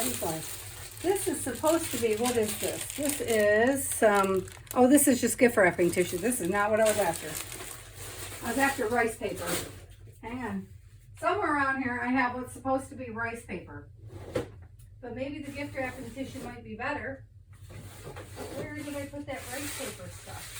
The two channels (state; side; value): identical; both; correlation 1.00